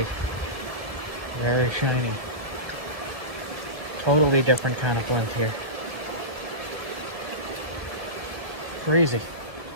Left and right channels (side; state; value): left; late; 1.0 ms